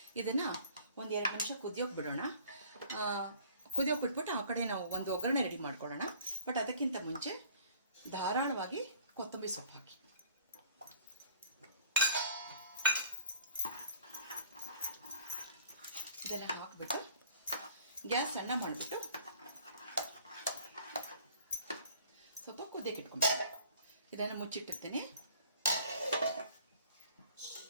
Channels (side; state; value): both; inverted; correlation -0.53